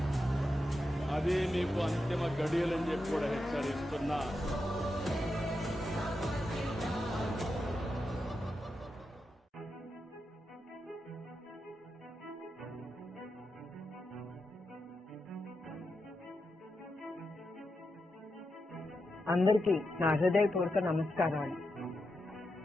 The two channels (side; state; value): both; normal; correlation 0.87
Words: అదే మీకు అంతిమ గడియలని చెప్పి కూడా హెచ్చరిస్తున్నా. అందరికీ నా హృదయపూర్వక నమస్కారాలు.